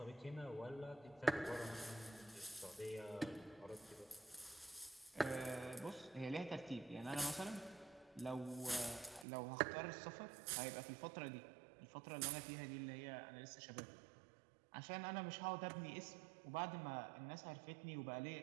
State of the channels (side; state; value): left; drops out; at 9.2 s